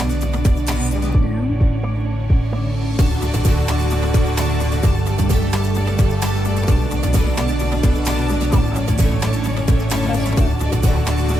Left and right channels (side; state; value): both; normal; correlation 0.86